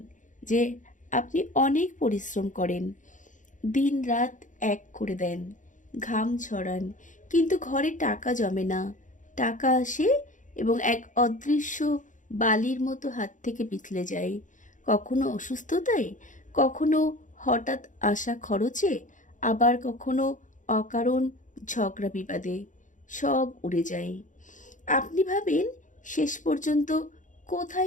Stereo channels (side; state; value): right; late; 0.37 ms